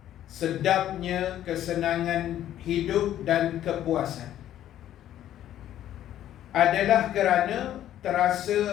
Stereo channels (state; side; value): quieter; right; 11.9 dB